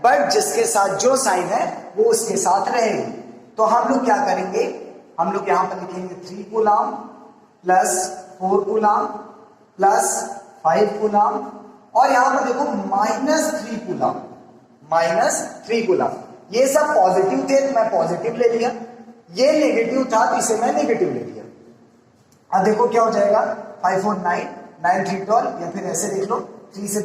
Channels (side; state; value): both; identical; correlation 1.00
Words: बट जिसके साथ जो साइन है वो उसके साथ रहेगी। तो हम लोग क्या करेंगे, हम लोग यहां पर लिखेंगे 3 कूलम +4 कूलम +5 कूलम और यहां पर देखो -3 कूलम। ये सब पॉजिटिव थे तो मैं पॉजिटिव ले लिया, ये नेगेटिव था तो इसे मैं नेगेटिव ले लिया। अब देखो क्या हो जाएगा, 5 4 9 9 3 12 या फिर ऐसे देख लो 3 से